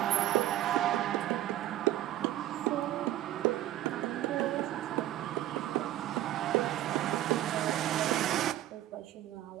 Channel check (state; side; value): quieter; left; 13.5 dB